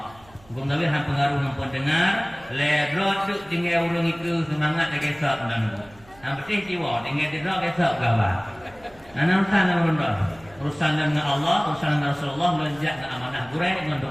Bukan tapi hang pengaruh nampak dengar, ledrot duk tinggal urung itu semangat lagi esok dan hang betul jiwa tinggal ledrot esok gawa. Urusan dengan urusan dengan Allah, urusan dengan Rasulullah melonjak ke amanah gurai dengan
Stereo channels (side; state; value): right; noise; hum, 26 dB below the sound